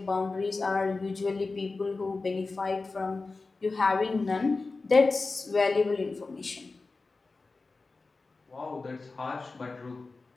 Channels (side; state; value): right; quieter; 3.8 dB